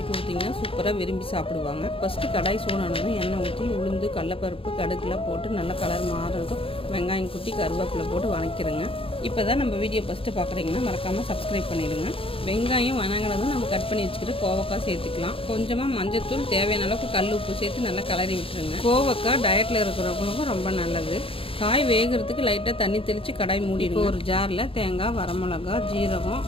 கொடுத்தீங்கன்னா சூப்பராக விரும்பி சாப்பிடுவாங்க. ஃபஸ்ட்டு கடாய் சூடானதும் எண்ணெய் ஊற்றி உளுந்து, கடலப்பருப்பு, கடுகுலாம் போட்டு நல்லா கலர் மாறுறதும் வெங்காயம் குட்டி கருவேப்பிலை போட்டு வதக்கிடுங்க. இப்போ தான் நம்ம வீடியோ ஃபஸ்ட்டு பார்க்குறீங்கன்னா மறக்காமல் சப்ஸ்கிரைப் பண்ணிடுங்க. வெங்காயம் வதங்கினதும் நம்ம கட் பண்ணி வச்சுக்கிட்டு கோவக்காய் சேர்த்துக்கலாம். கொஞ்சமாக மஞ்சத்தூள், தேவையான அளவுக்கு கல் உப்பு சேர்த்து நல்லா கலரி விட்டுருங்க. கோவக்காய் டயட்டில் இருக்கிறவங்களுக்கும் ரொம்ப நல்லது. காய் வேகிறதுக்கு லைட்டாக தண்ணி தெளித்து கடாய் மூடிடுங்க. ஒரு ஜாரில் தேங்காய், வரமிளகா, ஜீரகம்,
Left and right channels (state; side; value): late; right; 0.27 ms